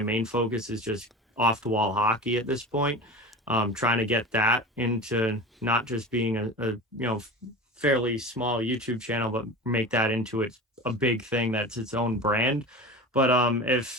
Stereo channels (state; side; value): normal; both; correlation 0.32